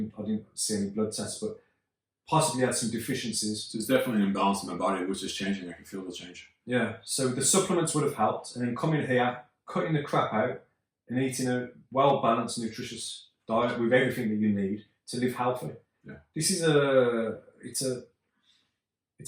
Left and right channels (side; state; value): both; identical; correlation 1.00